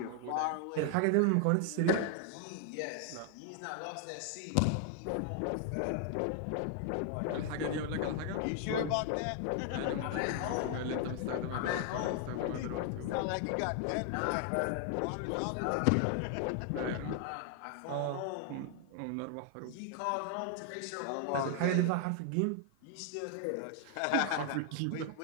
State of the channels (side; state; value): both; different; correlation 0.00